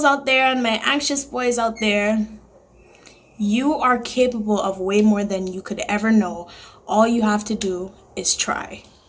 out there and my anxious boys out there, you are capable of way more than you could ever know. All you have to do is try.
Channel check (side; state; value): both; identical; correlation 1.00